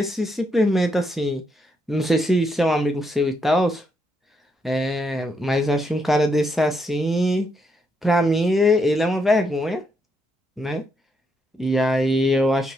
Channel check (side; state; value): both; normal; correlation 0.78